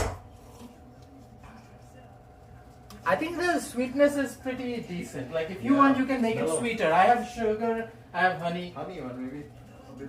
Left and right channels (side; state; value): both; identical; correlation 1.00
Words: I think the sweetness is pretty decent. Like if you Yeah, want, you can make it mellow. sweeter. I have sugar, I have honey. Honey one maybe. A bit